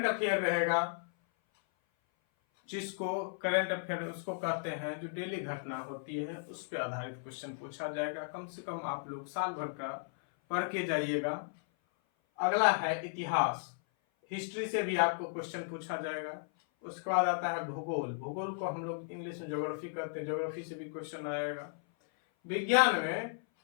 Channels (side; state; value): right; silent; 54 dB below the other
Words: अफेयर रहेगा, जिसको करंट अफेयर उसको कहते हैं जो डेली घटना होती है उस पर आधारित क्वेश्चन पूछा जाएगा। कम से कम आप लोग साल भर का पढ़ के जाइएगा। अगला है इतिहास, हिस्ट्री से भी आपको क्वेश्चन पूछा जाएगा। उसके बाद आता है भूगोल, भूगोल को हम लोग इंग्लिश में ज्योग्राफी कहते हैं, ज्योग्राफी से भी क्वेश्चन आएगा। विज्ञान में